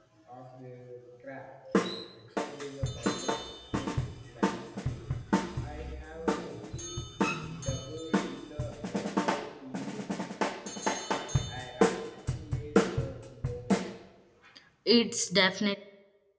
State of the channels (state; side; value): identical; both; correlation 1.00